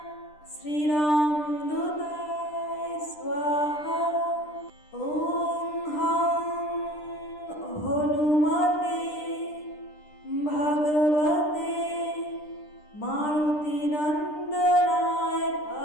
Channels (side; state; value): right; late; 10 ms